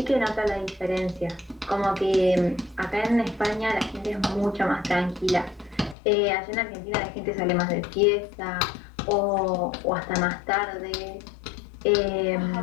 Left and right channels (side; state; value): right; drops out; at 6.0 s